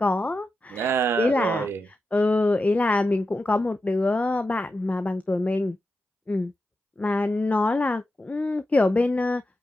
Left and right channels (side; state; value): both; normal; correlation 0.89